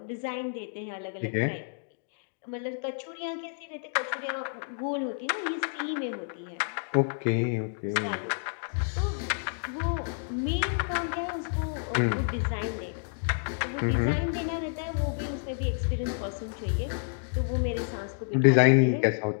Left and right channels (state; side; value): silent; right; digital silence